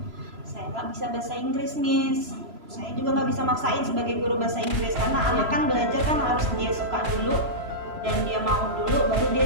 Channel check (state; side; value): late; left; 3.0 ms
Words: Saya nggak bisa bahasa Inggris, Miss. Saya juga nggak bisa maksain sebagai guru bahasa Inggris karena anak kan belajar kan harus dia suka dulu dan dia mau dulu, baru